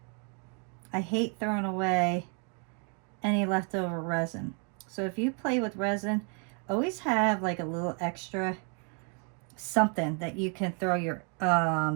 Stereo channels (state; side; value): quieter; left; 38.9 dB